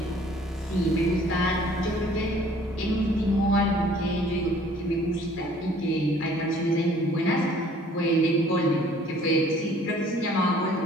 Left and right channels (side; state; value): both; normal; correlation 0.55